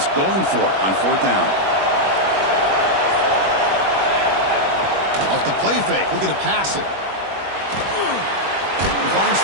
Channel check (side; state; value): left; late; 21 ms